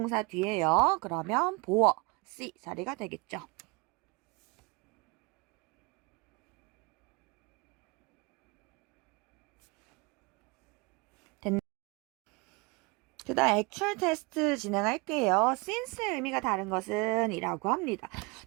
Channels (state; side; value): quieter; left; 28.0 dB